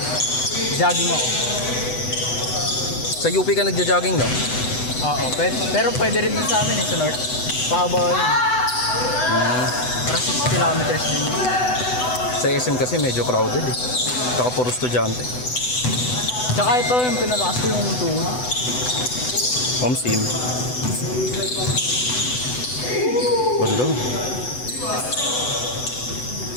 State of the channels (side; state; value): right; late; 8.0 ms